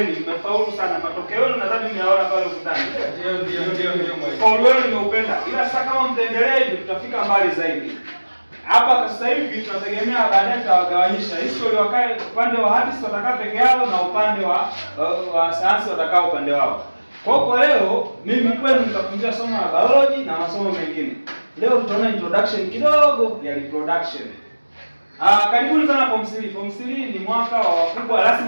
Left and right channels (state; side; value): inverted; both; correlation -1.00